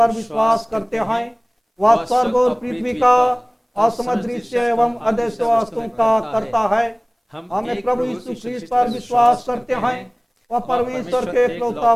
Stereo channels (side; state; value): both; identical; correlation 1.00